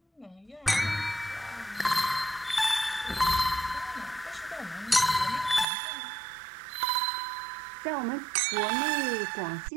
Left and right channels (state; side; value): drops out; left; at 5.7 s